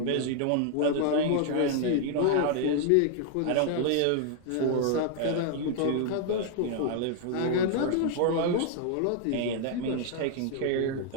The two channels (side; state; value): both; different; correlation 0.00